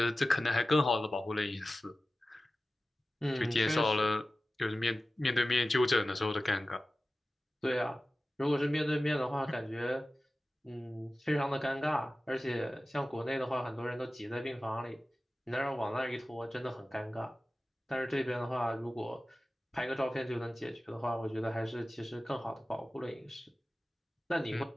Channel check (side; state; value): both; normal; correlation 0.95